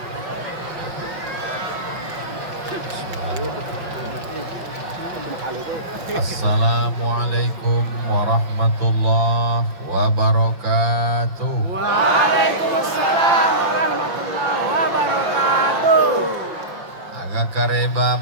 Assalamualaikum warahmatullahi wabarakatuh. Waalaikumsalam warahmatullahi wabarakatuh. Agak kareba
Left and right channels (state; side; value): late; left; 5.7 ms